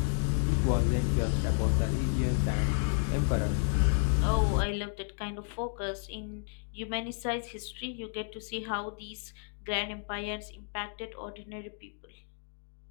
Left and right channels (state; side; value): silent; right; digital silence